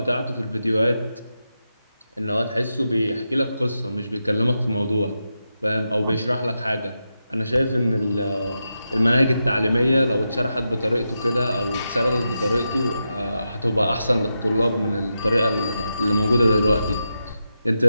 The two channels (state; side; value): inverted; both; correlation -0.88